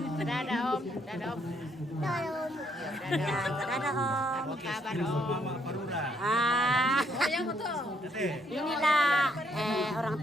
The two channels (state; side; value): normal; both; correlation 0.71